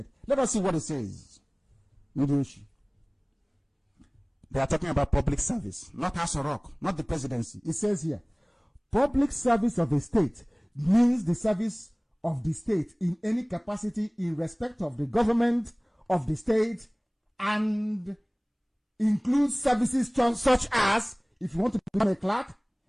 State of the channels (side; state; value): both; identical; correlation 1.00